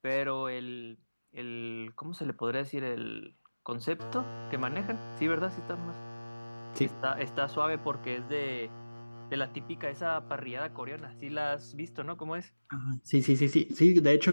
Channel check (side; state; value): both; inverted; correlation -1.00